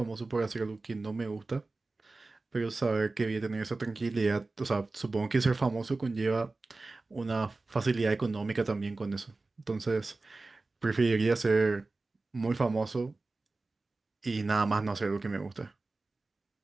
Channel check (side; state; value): left; quieter; 3.4 dB